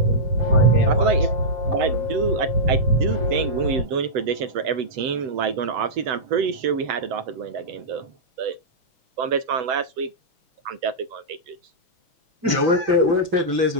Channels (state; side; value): late; left; 6.2 ms